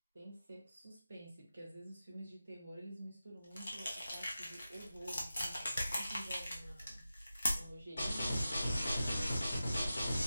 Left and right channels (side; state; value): both; inverted; correlation -0.93